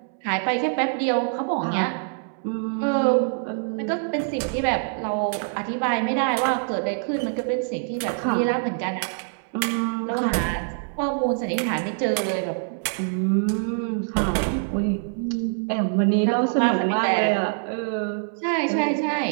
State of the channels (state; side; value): silent; left; 62 dB below the other